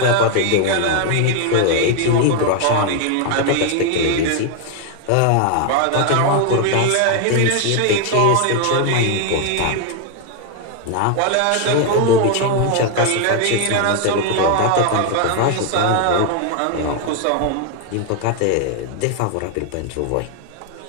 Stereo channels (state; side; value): different; both; correlation 0.00